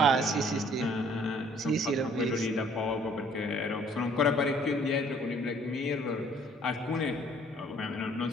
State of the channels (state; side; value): normal; both; correlation 0.59